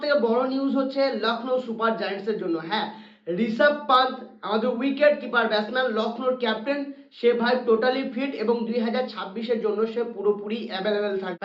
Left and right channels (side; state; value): both; identical; correlation 1.00